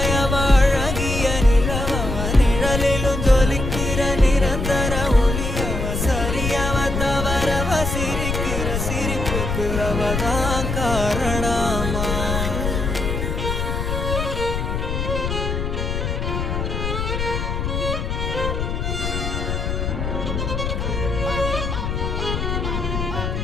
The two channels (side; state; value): left; noise; rumble, 2 dB below the sound